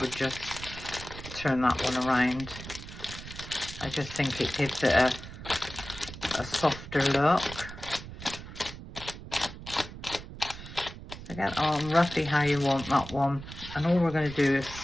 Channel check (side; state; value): right; noise; rumble, 13 dB below the sound